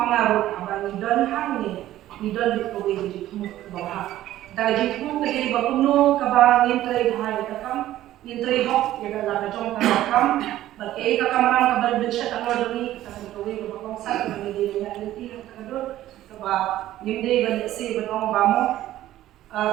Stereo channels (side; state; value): left; quieter; 13.9 dB